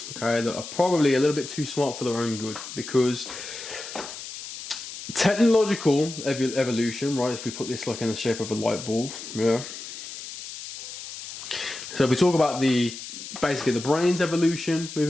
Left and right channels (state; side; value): noise; left; hiss, 11 dB below the sound